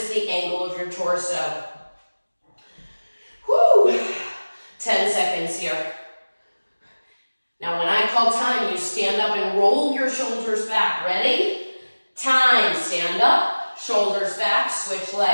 the angle of your torso. Woo! 10 seconds here. Now when I call time, you stand up and roll your shoulders back. Ready? Time. Stand up, shoulders back, switch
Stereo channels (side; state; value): both; inverted; correlation -1.00